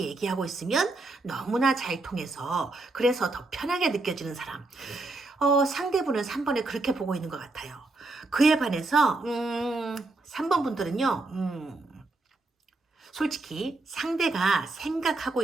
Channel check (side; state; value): left; quieter; 3.2 dB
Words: 있으면 너무나 잘 통해서 그래서 더 편하게 느껴지는 사람, 상대분은 3번을 그렇게 보고 있는 것 같아요. 그에 반해서 3번 분들은요, 솔직히 상대가 생각하고